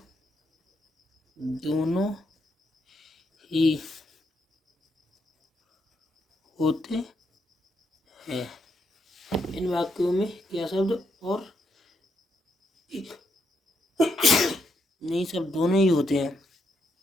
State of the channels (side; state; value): both; normal; correlation 0.78